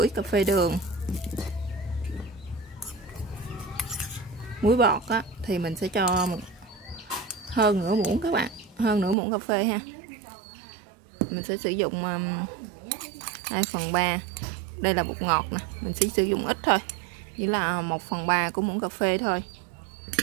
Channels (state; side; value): drops out; left; at 9.2 s